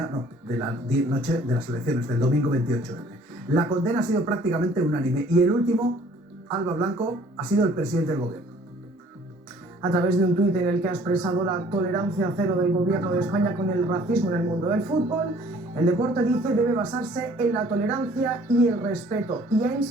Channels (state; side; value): normal; both; correlation 0.55